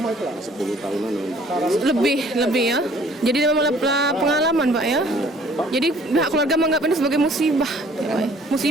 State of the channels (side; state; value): both; normal; correlation 0.56